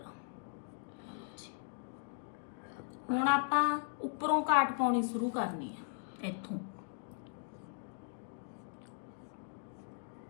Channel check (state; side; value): silent; right; digital silence